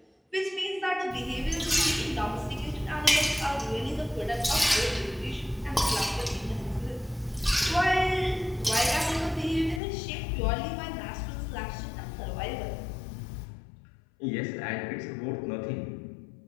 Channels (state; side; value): drops out; right; at 9.8 s